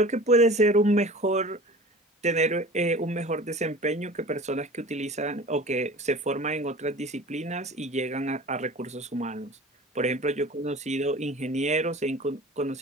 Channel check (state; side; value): normal; both; correlation 0.40